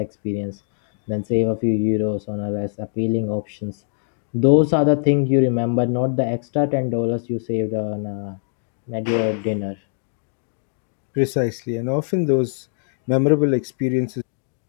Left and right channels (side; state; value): right; silent; digital silence